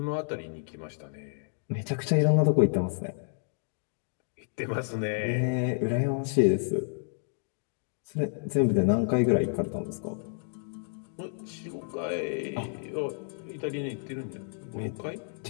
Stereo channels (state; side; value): silent; right; digital silence